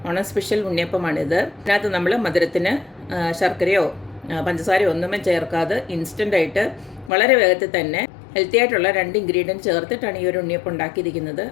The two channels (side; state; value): right; drops out; at 7.1 s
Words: ഓണം സ്പെഷ്യൽ ഉണ്ണിയപ്പമാണിത്. ഇതിനകത്ത് നമ്മൾ മധുരത്തിന് ശർക്കരയോ പഞ്ചസാരയോ ഒന്നും ചേർക്കാതെ ഇൻസ്റ്റൻ്റായിട്ട് വളരെ വേഗത്തിൽ തന്നെ ഹെൽത്തി ആയിട്ടുള്ള 2 ഇൻഗ്രീഡിയൻറ്റ് ചേർത്തിട്ടാണ് ഈ ഒരു ഉണ്ണിയപ്പം ഉണ്ടാക്കിയിരിക്കുന്നത്.